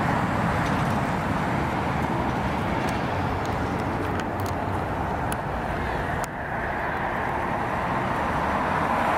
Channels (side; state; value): both; identical; correlation 1.00